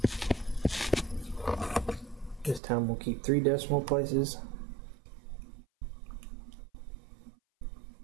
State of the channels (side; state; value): left; drops out; at 2.6 s